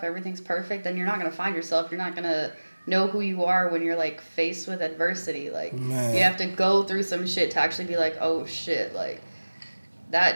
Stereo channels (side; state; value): both; inverted; correlation -1.00